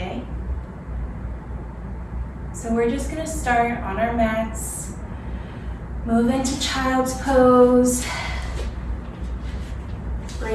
So we're just going to start on our mats, move into child's pose,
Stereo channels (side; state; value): both; identical; correlation 1.00